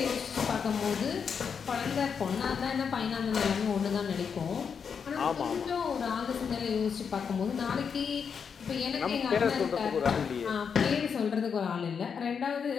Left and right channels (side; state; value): right; quieter; 6.5 dB